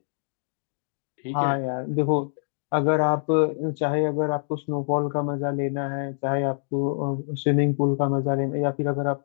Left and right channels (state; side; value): silent; right; digital silence